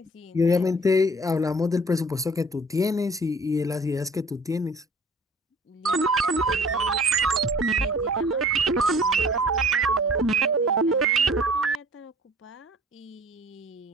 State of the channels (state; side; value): normal; both; correlation 0.50